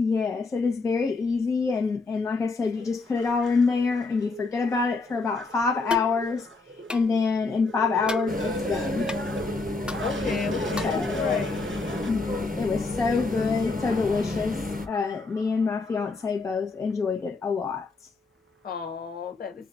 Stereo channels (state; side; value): quieter; right; 3.9 dB